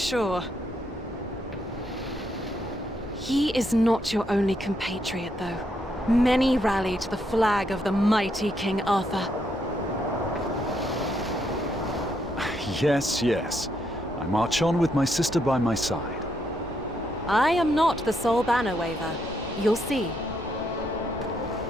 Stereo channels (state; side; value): normal; both; correlation 0.76